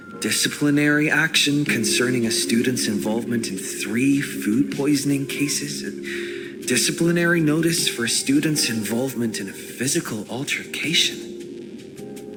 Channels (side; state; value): both; identical; correlation 1.00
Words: Disciplinary action concerning a student's involvement in 3 food poisoning cases. Disciplinary notice for a student's involvement in a physical altercation.